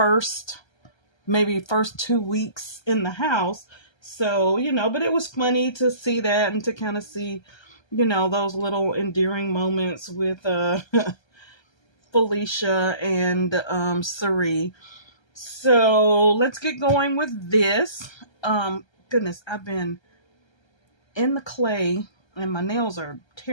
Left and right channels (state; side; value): late; right; 1.3 ms